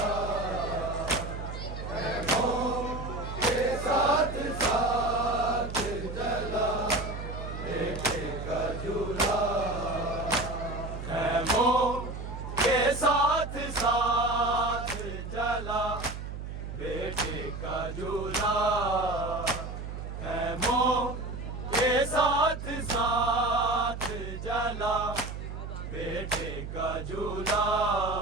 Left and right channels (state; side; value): noise; right; hum, 8 dB below the sound